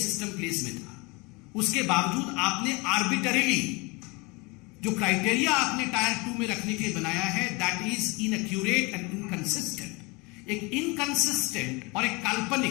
प्लेस में था। उसके बावजूद आपने आर्बिटरीली जो क्राइटेरिया आपने टायर 2 में रखने के लिए बनाया है, that is inaccurate and inconsistent. एक इनकंसिस्टेंट और एक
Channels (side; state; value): right; quieter; 26.9 dB